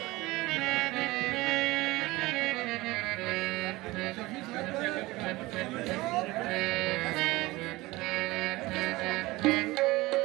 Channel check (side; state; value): left; quieter; 20.2 dB